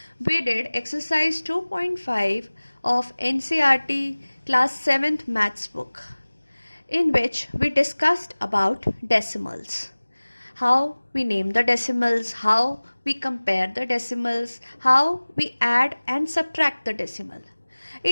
we did exercise 2.5 of NCERT class 7th maths book, in which we discussed about decimals. How we name the decimals, how we compare the decimals, how we add and subtract the decimal.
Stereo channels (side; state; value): both; inverted; correlation -1.00